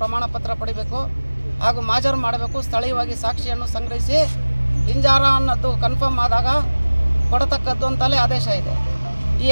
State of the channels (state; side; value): inverted; both; correlation -1.00